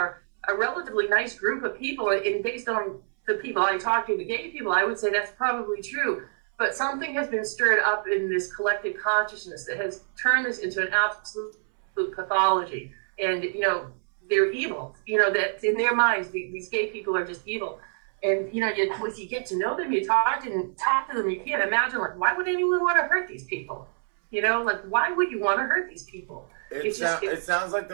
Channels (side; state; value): left; silent; 61 dB below the other